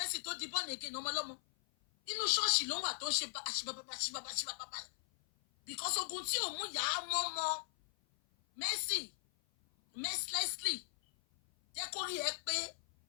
tó di born again ọmọlọ́mọ. Inú ṣọ́ọ̀ṣì ló wà tó ń ṣe àṣìbàbà. Because ogun tí ò mú yà á mọ́mọ́ Mercy mercilessly jẹ́ kó rí ẹ pé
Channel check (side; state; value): right; silent; 52 dB below the other